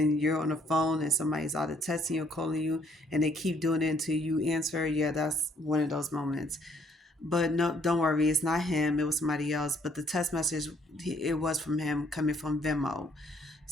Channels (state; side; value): normal; both; correlation 0.65